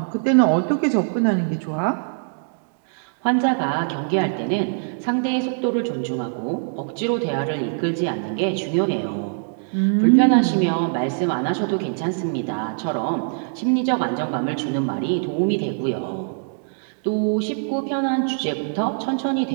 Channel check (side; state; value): left; silent; digital silence